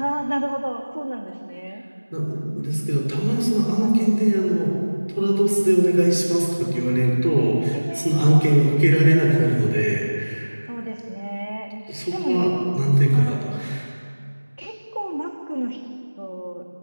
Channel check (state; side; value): inverted; both; correlation -1.00